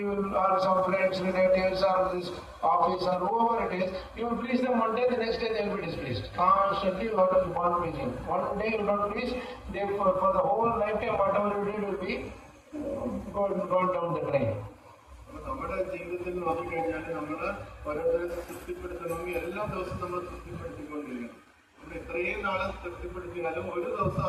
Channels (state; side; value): identical; both; correlation 1.00